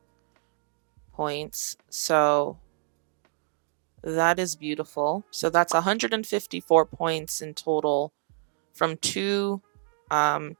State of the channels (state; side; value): silent; left; digital silence